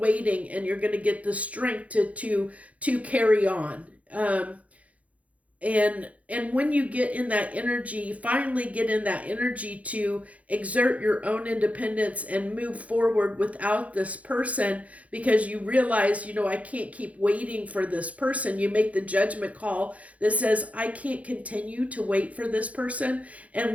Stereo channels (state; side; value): late; left; 0.067 ms